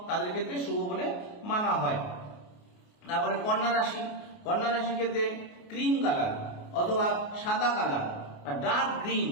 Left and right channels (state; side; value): late; right; 28 ms